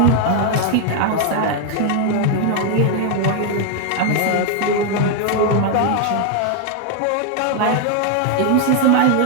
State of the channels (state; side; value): different; both; correlation 0.00